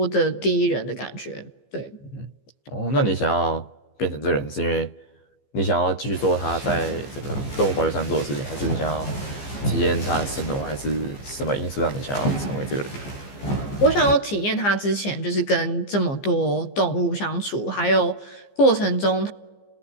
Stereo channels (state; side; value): late; right; 15 ms